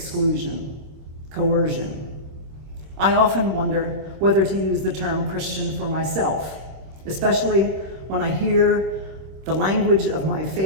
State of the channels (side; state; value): left; late; 26 ms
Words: coercion. I often wonder whether to use the term Christian for myself, especially when I hear the language of my